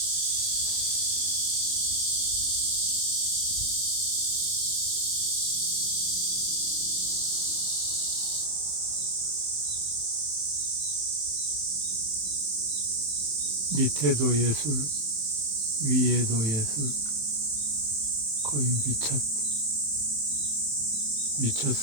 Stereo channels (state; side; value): late; left; 27 ms